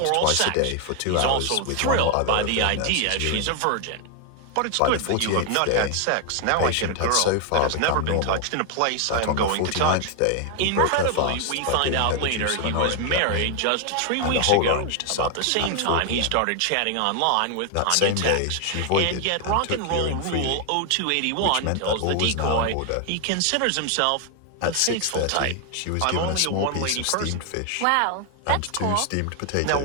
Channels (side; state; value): both; different; correlation 0.00